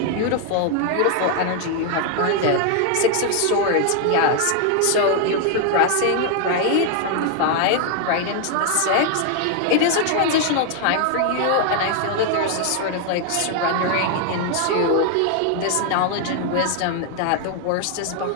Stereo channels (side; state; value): both; different; correlation 0.00